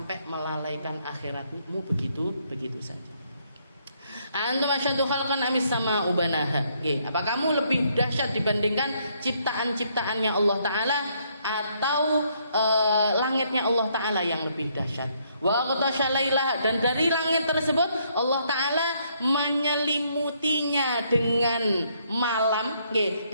melalaikan akhiratmu begitu saja. Antum asyaddu khalqan amis sama ubanaha. Apa kamu lebih dahsyat dibandingkan ciptaan-ciptaannya Allah Ta'ala atau langitnya Allah Ta'ala yang lebih dahsyat? Wa aghtasha lailaha, dan dari langit tersebut Allah Ta'ala menyelimutinya dengan malam.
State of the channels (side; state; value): both; inverted; correlation -0.70